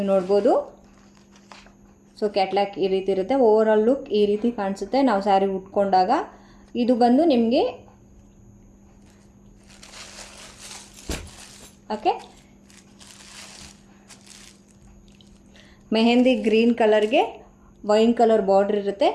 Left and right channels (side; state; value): both; identical; correlation 1.00